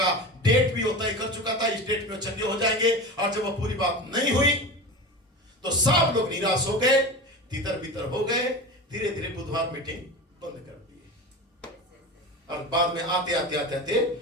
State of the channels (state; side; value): normal; both; correlation 0.28